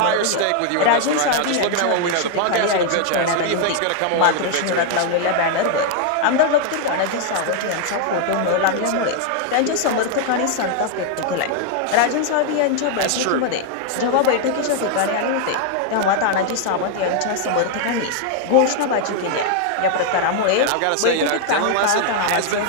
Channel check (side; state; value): both; different; correlation 0.00